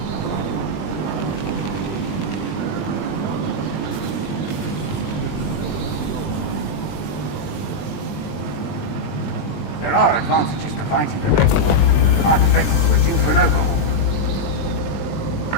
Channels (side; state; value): right; late; 20 ms